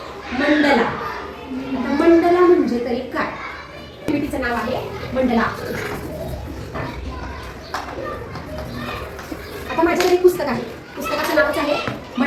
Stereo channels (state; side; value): identical; both; correlation 1.00